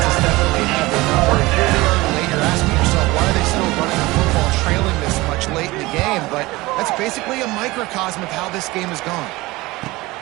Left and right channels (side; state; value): left; quieter; 20.7 dB